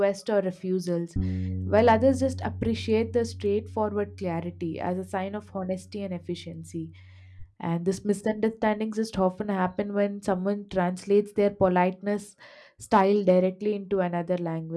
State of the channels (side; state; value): both; identical; correlation 1.00